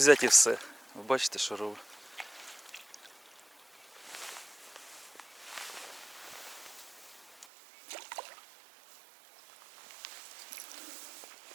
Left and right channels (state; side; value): drops out; left; at 7.5 s